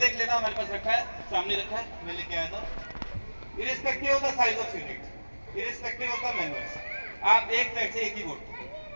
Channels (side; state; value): both; inverted; correlation -1.00